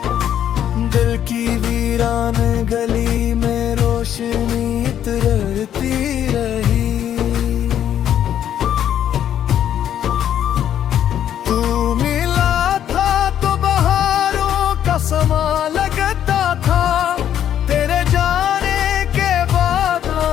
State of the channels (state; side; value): quieter; right; 10.3 dB